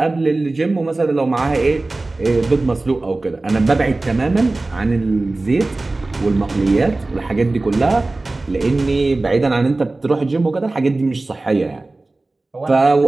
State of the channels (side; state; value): left; quieter; 3.1 dB